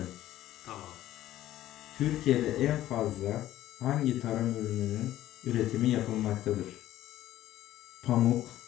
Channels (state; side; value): quieter; right; 13.7 dB